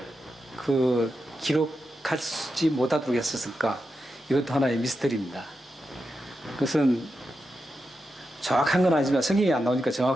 기록하지 못하도록 했었을까? 이것도 하나의 미스터리입니다. 그것은 정확한 건 아니지만, 성경이 안 나오니까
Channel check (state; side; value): normal; both; correlation 0.88